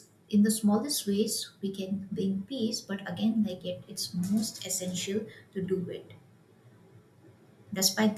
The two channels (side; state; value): both; identical; correlation 1.00